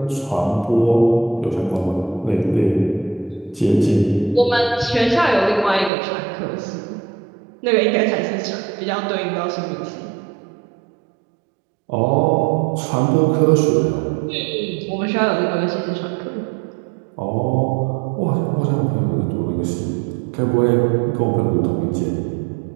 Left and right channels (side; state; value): left; drops out; at 5.9 s